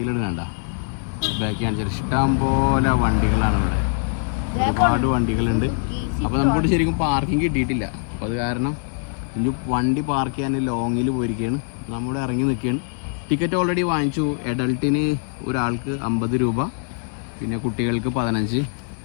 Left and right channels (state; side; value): silent; right; 58 dB below the other